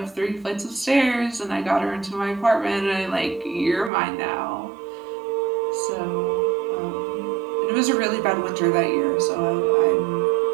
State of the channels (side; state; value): left; drops out; at 3.9 s